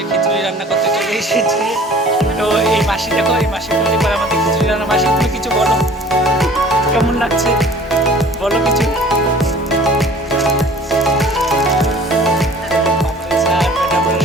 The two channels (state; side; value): normal; both; correlation 0.48